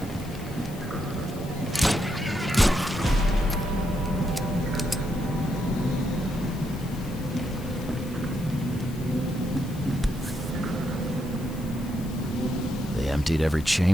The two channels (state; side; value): noise; left; hiss, 19 dB below the sound